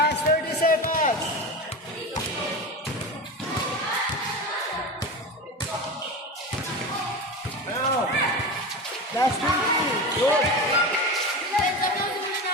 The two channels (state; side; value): normal; both; correlation 0.25